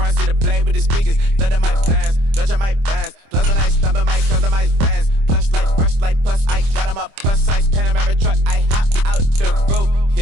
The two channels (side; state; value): left; late; 25 ms